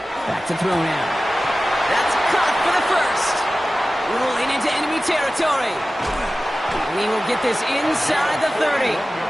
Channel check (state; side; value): normal; both; correlation 0.96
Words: Back to throw now. That's caught for the first. Rolling into enemy territory. And he will get this inside the 30.